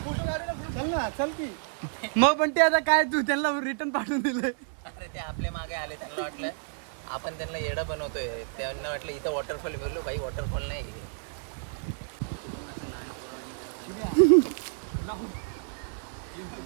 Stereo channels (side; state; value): left; silent; 57 dB below the other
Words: चल की. मग पण ते आता काय तू त्यांना रिटर्न पाठवून दिलंय? अरे ते आपल्या मागे आले, त्यांना वाटलं आपण त्यांना येडा बनवतोय. त्यांना वाटलं इथं वॉटरफॉल बोललो, भाई वॉटरफॉल नाही. मग असं लहान पोरं